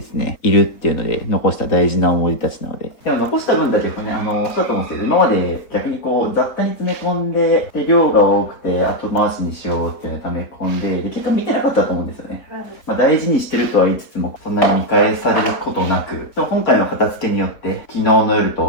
すね、いるっていうので残した大事な思い出たちなので。でも残した分だけね、そうだと思うんですけど、今まで逆にこう雑多に詰め込んで、で、量が多くて後回しにしようっていうのを溜め込んで、で、結果見てなかったと思うんですよね。まあ大事にしてるとは言いつつも、そんなに見返されることなく、でも今回の片付けによって、昨日の夜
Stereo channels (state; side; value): late; right; 4.1 ms